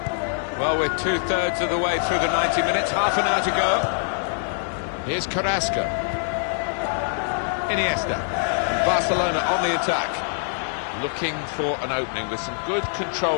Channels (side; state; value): right; silent; digital silence